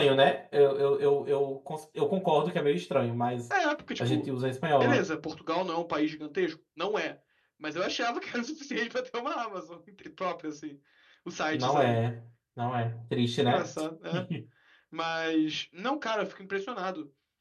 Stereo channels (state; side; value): identical; both; correlation 1.00